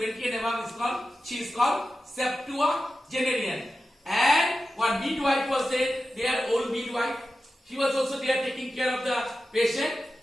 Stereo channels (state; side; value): normal; both; correlation 0.93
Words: and above she is called septuagenarian. And one midwife was there, old midwife. She was also there taking care of the patient.